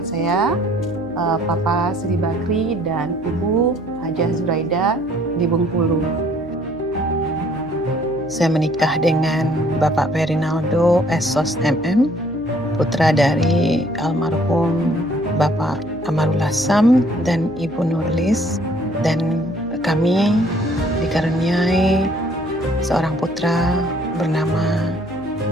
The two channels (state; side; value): noise; left; hum, 21 dB below the sound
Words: saya, Papa Sri Bakri dan Ibu Hajah Zuraida di Bengkulu. Saya menikah dengan Bapak Perinaldo Esos MM, putra dari almarhum Bapak Amarul Hassam dan Ibu Nurlis, dan kami dikaruniai seorang putra bernama